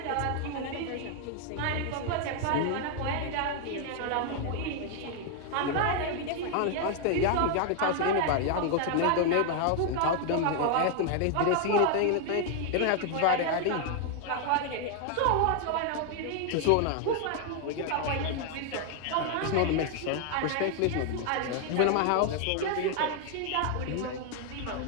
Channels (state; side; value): different; both; correlation 0.00